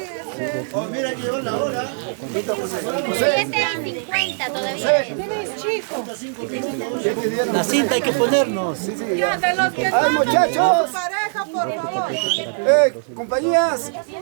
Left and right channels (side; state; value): left; silent; 59 dB below the other